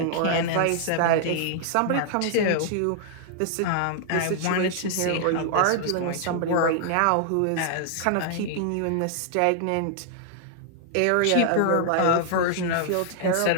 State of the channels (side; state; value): both; different; correlation -0.01